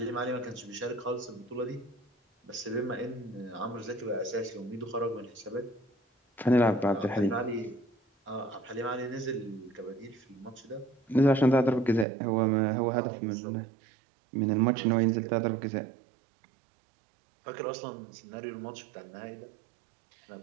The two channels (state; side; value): drops out; left; at 12.1 s